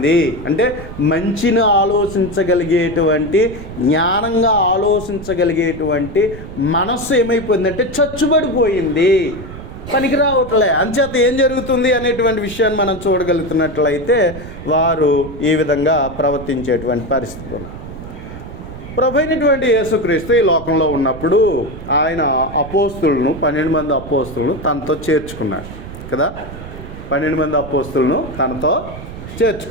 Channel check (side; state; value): right; noise; rumble, 12 dB below the sound